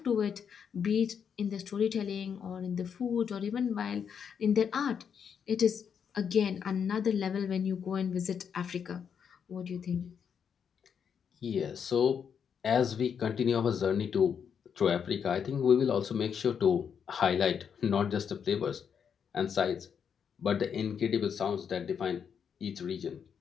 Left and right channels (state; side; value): quieter; right; 7.3 dB